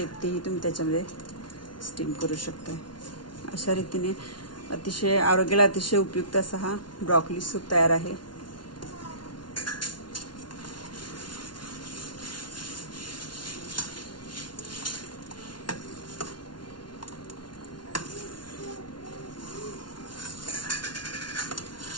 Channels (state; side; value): late; right; 0.70 ms